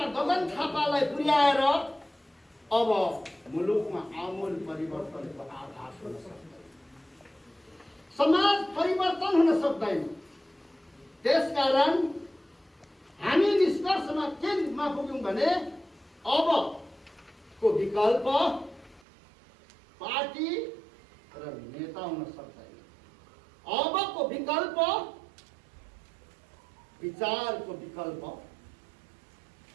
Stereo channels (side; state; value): left; drops out; at 19.0 s